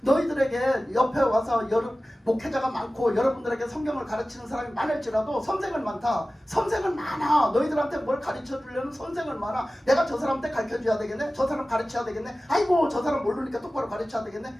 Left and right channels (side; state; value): both; normal; correlation 0.96